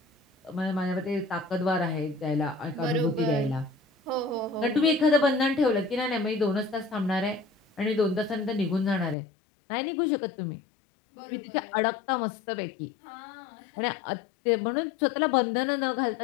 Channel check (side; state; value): right; drops out; at 9.2 s